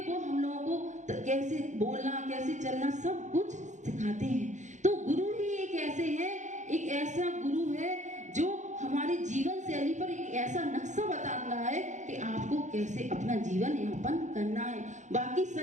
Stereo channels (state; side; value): late; left; 0.35 ms